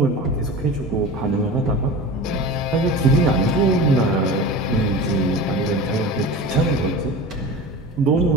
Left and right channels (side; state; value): both; normal; correlation 0.33